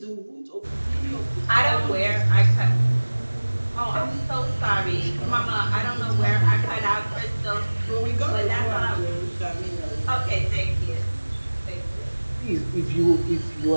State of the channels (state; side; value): inverted; both; correlation -1.00